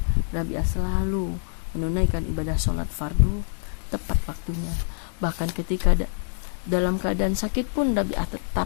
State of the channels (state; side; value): silent; right; digital silence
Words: Rabi'ah selalu menunaikan ibadah sholat fardu tepat waktunya. Bahkan ketika dalam keadaan sakit pun Rabi'ah